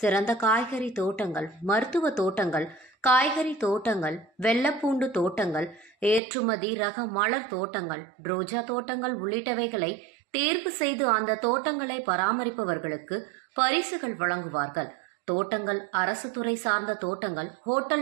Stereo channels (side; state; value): left; drops out; at 6.2 s